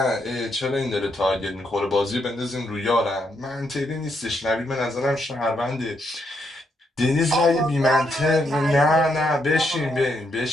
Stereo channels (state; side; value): normal; both; correlation 0.77